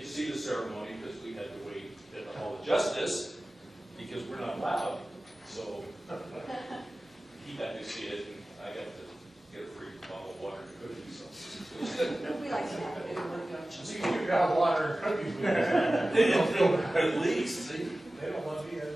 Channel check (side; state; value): both; normal; correlation 0.97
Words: to see the ceremony because we had to wait at the Hall of Justice because we're not allowed. So he got to see it, and I got to get a free bottle of water and cookies. So. We like that. See, you got water and cookies. At least, see? They don't want me, they